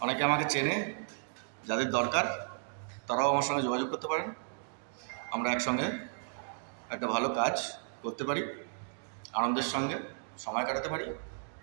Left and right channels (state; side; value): silent; left; digital silence